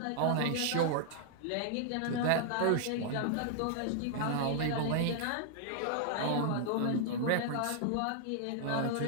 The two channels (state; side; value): different; both; correlation -0.01